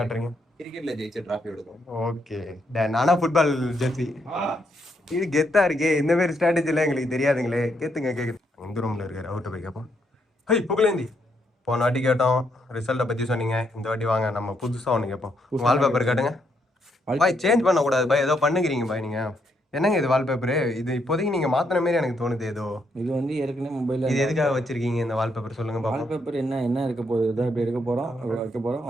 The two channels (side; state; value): both; normal; correlation 0.76